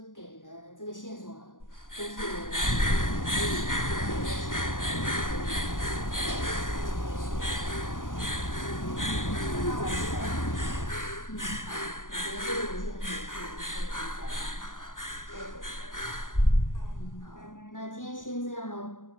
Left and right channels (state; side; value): late; right; 0.88 ms